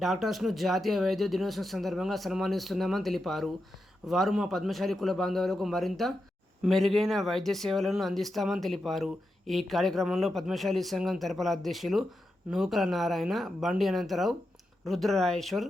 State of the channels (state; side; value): normal; both; correlation 0.88